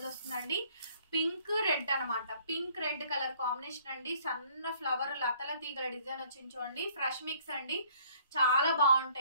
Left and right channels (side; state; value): both; inverted; correlation -0.59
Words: వస్తుందండి. పింక్ రెడ్ అనమాట. పింక్ రెడ్ కలర్ కాంబినేషన్ అండి. సన్న ఫ్లవర్ లతల తీగల డిజైన్ వచ్చింది చూడండి. ఫ్రెష్ మిక్స్ అండి. చాలా